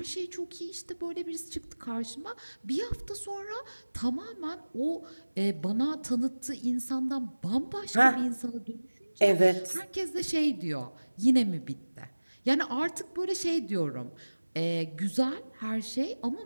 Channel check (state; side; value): inverted; both; correlation -1.00